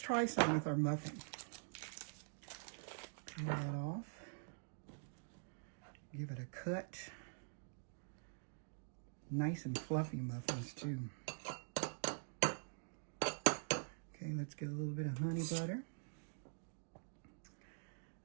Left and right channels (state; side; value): silent; left; digital silence